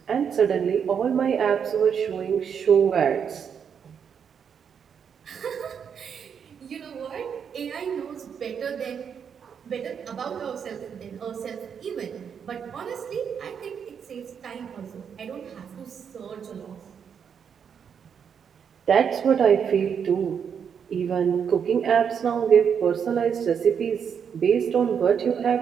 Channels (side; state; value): left; quieter; 7.3 dB